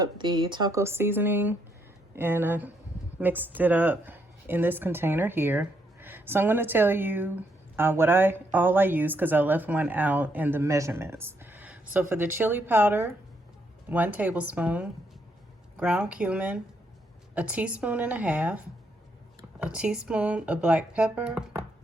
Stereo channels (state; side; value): normal; both; correlation 0.75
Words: the taco seasoning and I mixed it up in this container here. So I'm going to tell you all I use, because I left one out, in the measurements. So for the chili powder, 1 tablespoon, ground cumin, 1.5 teaspoons, a teaspoon of black pepper.